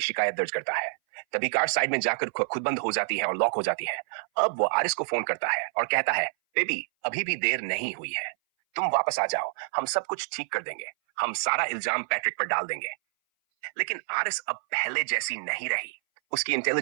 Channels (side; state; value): left; silent; 58 dB below the other